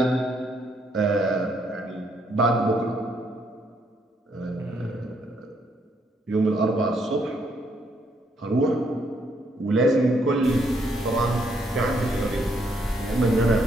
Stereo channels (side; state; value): both; normal; correlation 0.72